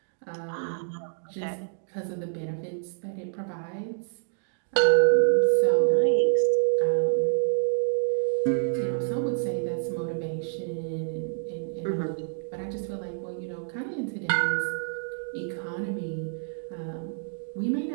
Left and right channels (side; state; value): left; silent; digital silence